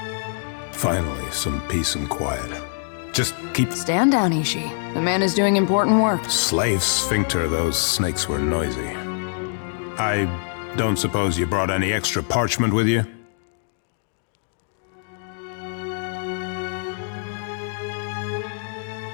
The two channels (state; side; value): silent; right; digital silence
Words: Finally, some peace and quiet. Just keep... Stand down, Ishi. The man is doing important work. Slave sphincter, those snakes were noisy. I don't suppose you brought any extra parchment with you?